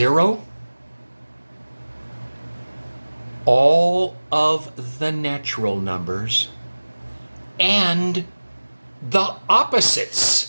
all of the natural numbers, and the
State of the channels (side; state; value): both; inverted; correlation -1.00